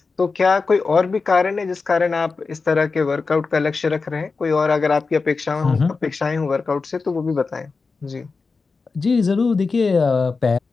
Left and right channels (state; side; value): quieter; right; 4.4 dB